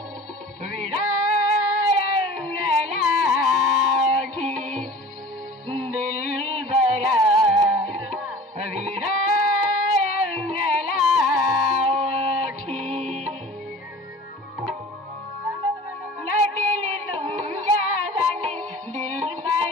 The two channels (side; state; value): both; normal; correlation 0.42